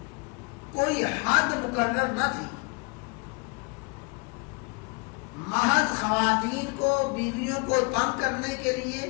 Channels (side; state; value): right; quieter; 30.3 dB